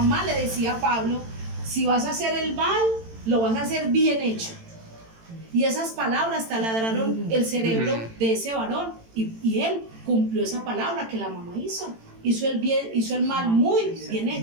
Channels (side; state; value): left; late; 18 ms